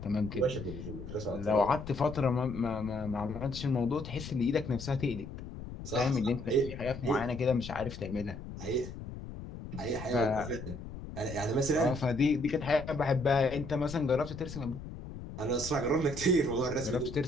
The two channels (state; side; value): noise; left; rumble, 10 dB below the sound